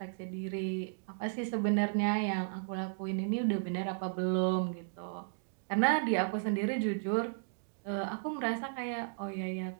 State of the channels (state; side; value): silent; left; digital silence